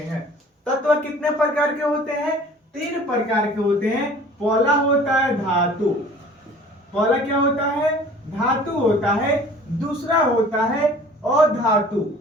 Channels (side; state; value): both; normal; correlation 0.48